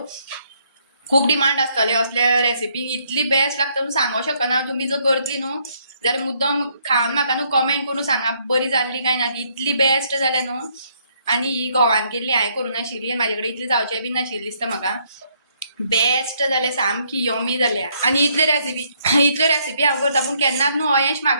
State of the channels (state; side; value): inverted; both; correlation -0.70